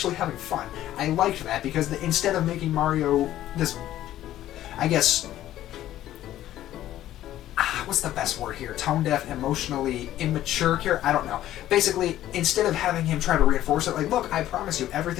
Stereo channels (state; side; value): quieter; right; 13.2 dB